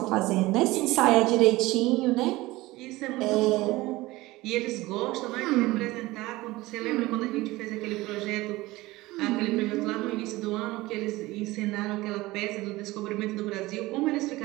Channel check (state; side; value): quieter; left; 19.5 dB